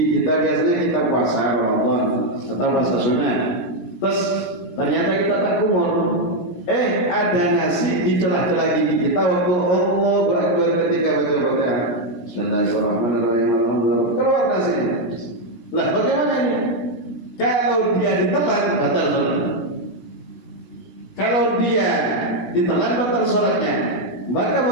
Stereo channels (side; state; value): right; late; 16 ms